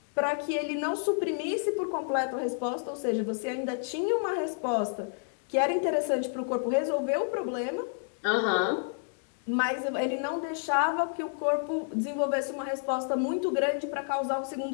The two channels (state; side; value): silent; right; digital silence